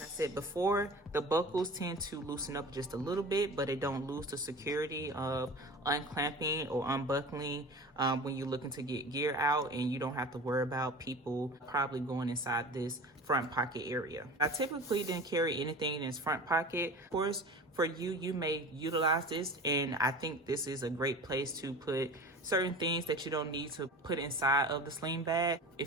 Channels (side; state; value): both; normal; correlation 0.36